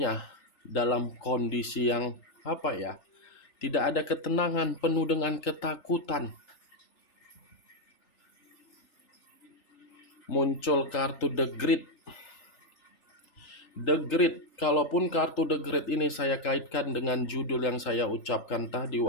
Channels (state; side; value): late; right; 3.4 ms